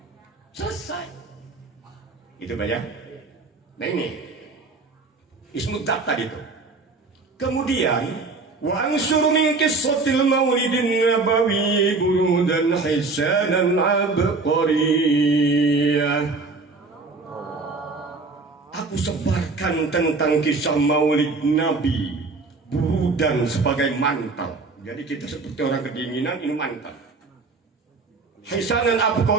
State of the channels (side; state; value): left; quieter; 3.8 dB